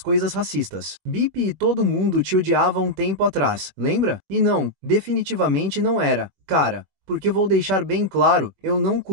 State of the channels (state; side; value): late; left; 21 ms